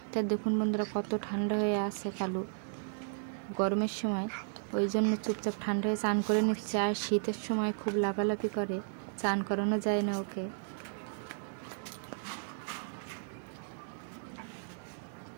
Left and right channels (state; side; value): silent; left; digital silence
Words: তা দেখুন বন্ধুরা, কত ঠান্ডা হয়ে আছে কালু গরমের সময়, ওই জন্য চুপচাপ ঠান্ডা হয়ে চান করে নিচ্ছে। আর শীতের সময় খুব লাফালাফি করে, চান করানো যায় না ওকে।